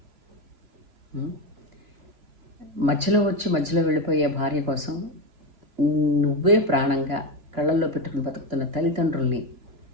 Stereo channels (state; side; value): late; left; 3.0 ms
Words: మధ్యలో వెళ్ళిపోయే భార్య కోసం నువ్వే ప్రాణంగా కళ్ళల్లో పెట్టుకుని బతుకుతున్న తల్లిదండ్రుల్ని